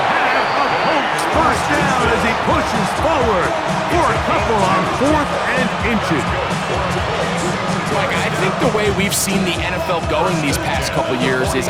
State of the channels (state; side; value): identical; both; correlation 1.00